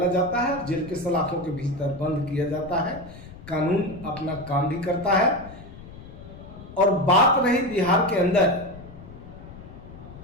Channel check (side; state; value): left; noise; rumble, 16 dB below the sound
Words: जाता है, जेल के सलाखों के भीतर बंद किया जाता है। कानून अपना काम भी करता है। और बात रही बिहार के अंदर,